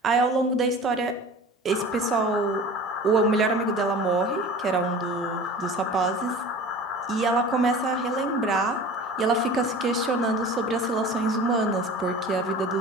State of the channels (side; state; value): both; normal; correlation 0.39